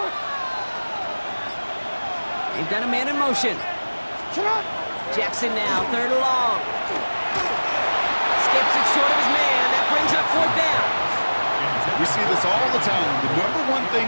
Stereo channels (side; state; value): both; inverted; correlation -1.00